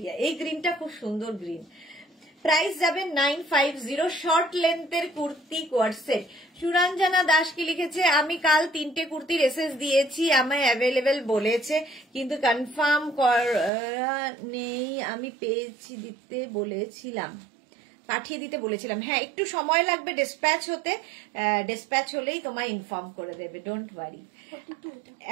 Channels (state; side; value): drops out; left; at 13.7 s